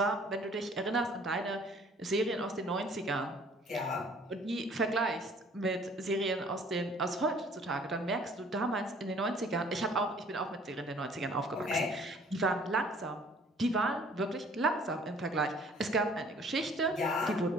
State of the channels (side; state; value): both; normal; correlation 0.55